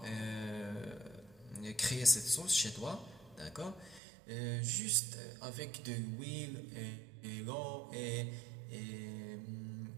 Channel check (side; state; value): left; drops out; at 4.0 s